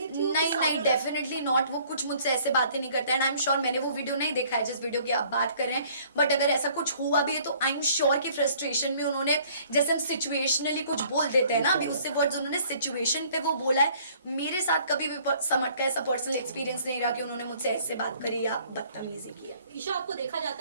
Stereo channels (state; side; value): inverted; both; correlation -0.58